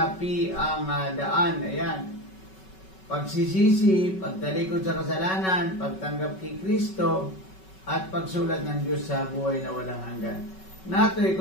P ang daan. Ayan. Pagsisisi, pagtalikod sa kasalanan, pagtanggap kay Kristo, at pagsulat ng Diyos sa buhay na walang hanggan. Natoy,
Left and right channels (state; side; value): late; right; 5.3 ms